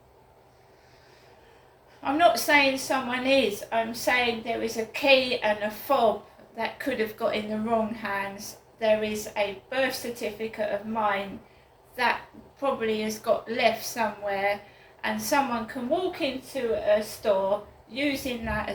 I'm not saying someone is. I'm saying there is a key and a fob that could have got in the wrong hands. There is a birth certificate of mine that probably has got left somewhere, and someone can walk into a store using that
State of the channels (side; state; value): both; identical; correlation 1.00